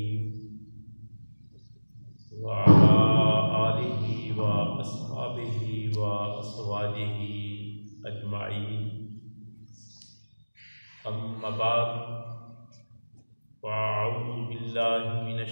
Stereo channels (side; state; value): both; inverted; correlation -1.00